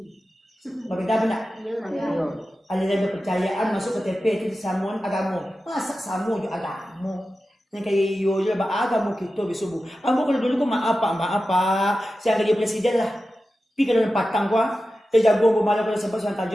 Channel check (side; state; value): both; normal; correlation 0.93